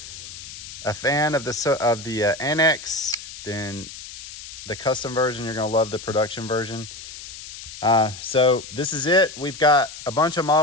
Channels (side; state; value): left; noise; hiss, 13 dB below the sound